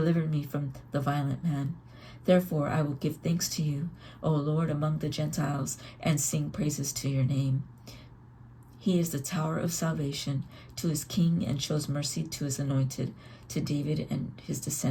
me from the violent man. Therefore I will give thanks to you, O Lord, among the Gentiles, and sing praises to your name. He is the tower of salvation to his king, and shows mercy to his anointed, to David and his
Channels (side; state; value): both; identical; correlation 1.00